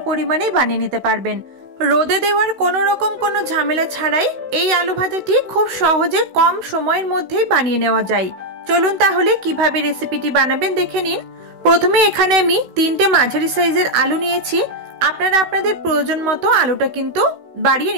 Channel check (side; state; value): left; late; 16 ms